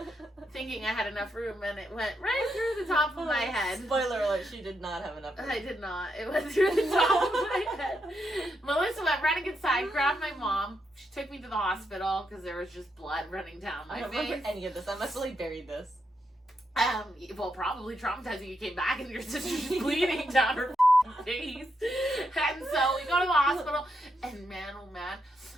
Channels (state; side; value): normal; both; correlation 0.82